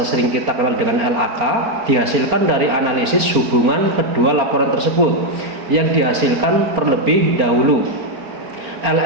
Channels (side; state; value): left; late; 4.4 ms